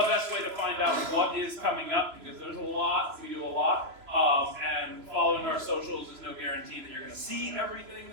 way to find out what is coming up, because there's a lot, we do a lot, and following our socials is no guarantee that you're going to see everything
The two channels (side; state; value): left; late; 3.0 ms